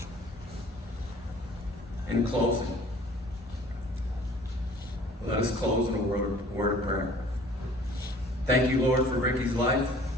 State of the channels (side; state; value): both; normal; correlation 0.51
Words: In closing, let us close in a word of prayer. Thank you, Lord, for Ricky's life